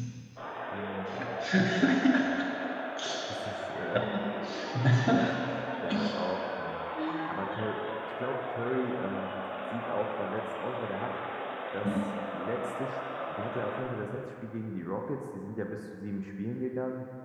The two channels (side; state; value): both; identical; correlation 1.00